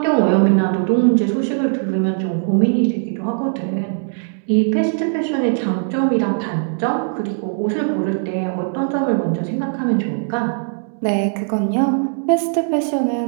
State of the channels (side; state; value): left; silent; digital silence